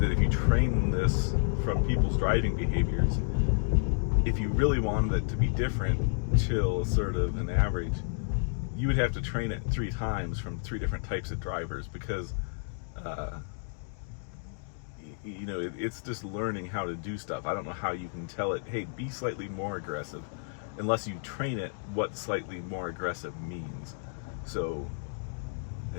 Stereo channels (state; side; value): silent; right; digital silence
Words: that if you train this from people's driving behaviors, if you really wanted it to be different, chill, assertive, and average, you would have to train it 3 times from 3 different types of drivers because you know, it's just learning how to do stuff. I don't know how you can tell it, hey, be slightly more aggressive, unless you train it what slightly more aggressive means. So